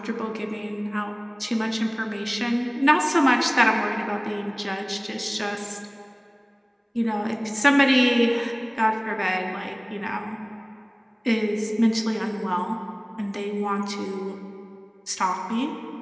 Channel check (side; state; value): both; identical; correlation 1.00